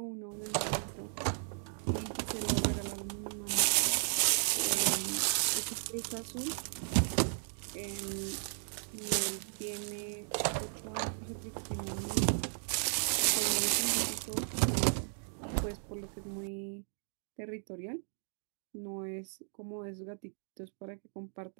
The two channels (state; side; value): silent; left; digital silence